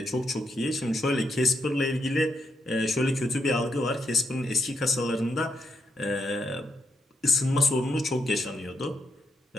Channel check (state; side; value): normal; both; correlation 0.80